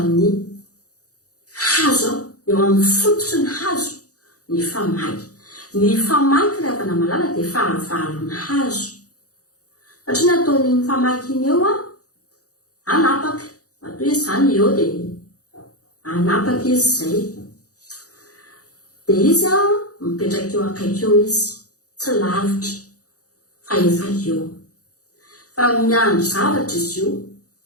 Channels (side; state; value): right; late; 0.67 ms